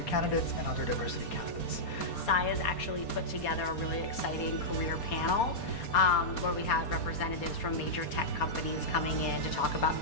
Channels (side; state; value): right; late; 4.2 ms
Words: candidates and other diversity candidates. Sai has actually put together a really exciting career panel where we had representatives from major tech companies coming in to talk about